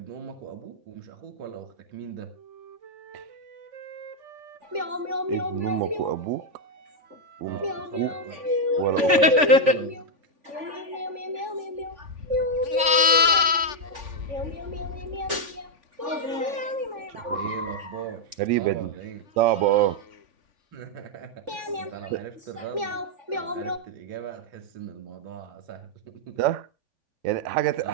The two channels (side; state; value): left; late; 3.5 ms